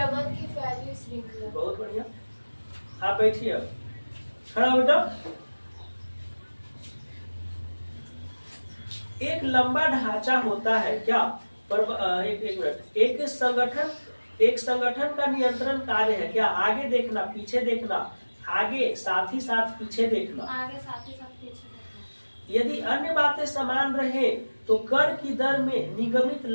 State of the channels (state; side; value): inverted; both; correlation -1.00